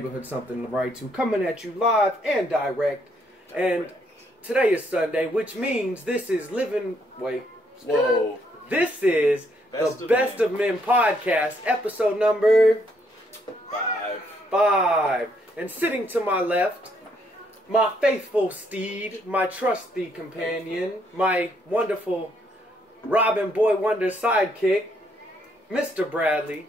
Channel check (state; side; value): normal; both; correlation 0.71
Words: Something to Write To, coming at you live and direct. And today is Sunday, which means this is This is the Best of Men podcast, episode number 5. And sitting to my left, my faithful steed, my trusty companion, my wonderful Robin Boy Wonder sidekick, Mr. Bradley.